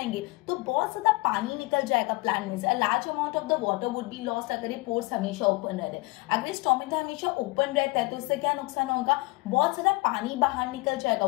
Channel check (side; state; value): right; quieter; 24.0 dB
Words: तो बहुत ज्यादा पानी निकल जाएगा प्लांट में से, a large amount of the water would be lost अगर ये पोर्स हमेशा ओपन रहते हैं। अगर ये स्टोमेटा हमेशा ओपन रहता है तो इससे क्या नुकसान होगा? बहुत ज्यादा पानी बाहर निकल जाएगा,